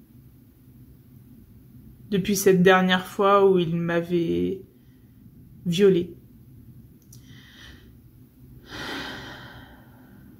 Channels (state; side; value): identical; both; correlation 1.00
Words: cette dernière fois où il m'avait violée.